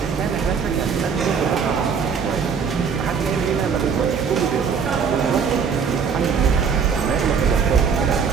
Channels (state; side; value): quieter; left; 6.3 dB